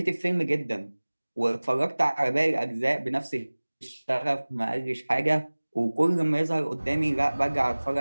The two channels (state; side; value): inverted; both; correlation -1.00